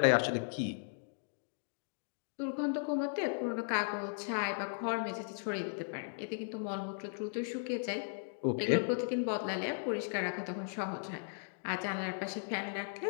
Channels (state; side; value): silent; right; digital silence